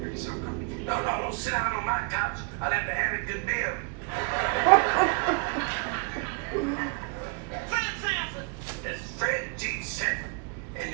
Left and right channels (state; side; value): quieter; left; 33.6 dB